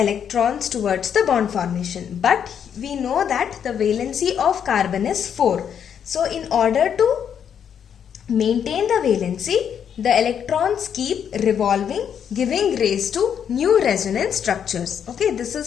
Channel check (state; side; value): quieter; right; 8.3 dB